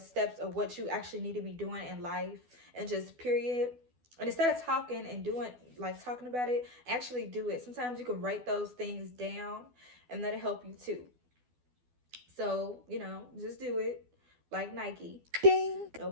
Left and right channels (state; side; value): late; left; 12 ms